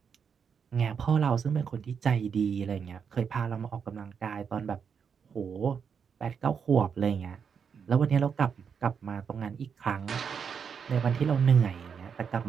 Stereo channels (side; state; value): left; quieter; 6.7 dB